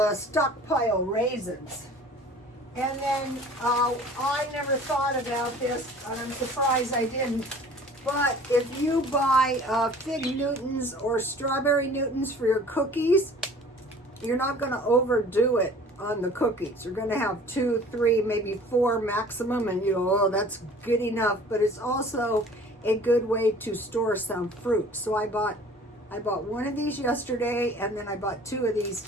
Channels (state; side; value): normal; both; correlation 0.48